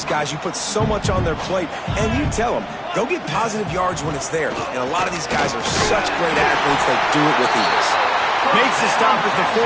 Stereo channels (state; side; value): identical; both; correlation 1.00